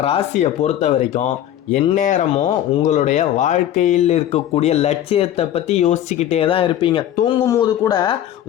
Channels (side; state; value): right; quieter; 11.5 dB